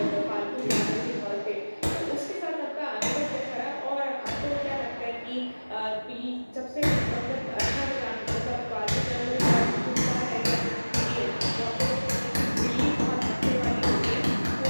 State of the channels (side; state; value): both; inverted; correlation -1.00